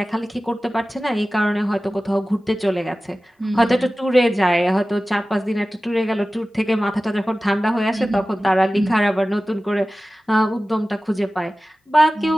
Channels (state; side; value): normal; both; correlation 0.96